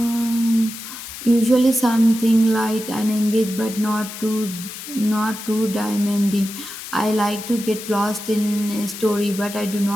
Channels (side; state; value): left; noise; hiss, 11 dB below the sound